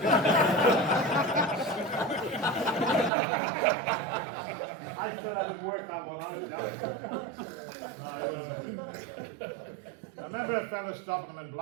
I still haven't worked that one out. I remember a fellow stopping him in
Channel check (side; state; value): left; drops out; at 3.1 s